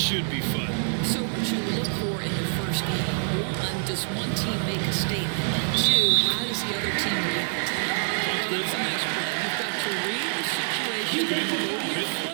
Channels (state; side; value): silent; left; 61 dB below the other